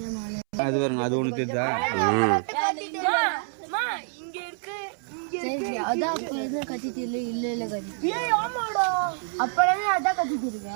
அது பாருங்க, அது ஒன்று தெரியுதா? இங்க இருக்கு. அதான் அப்ப எதுவும் கத்திட்டு இல்ல கத்திட்டு அப்பவே அதான் கத்திட்டு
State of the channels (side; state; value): left; silent; 60 dB below the other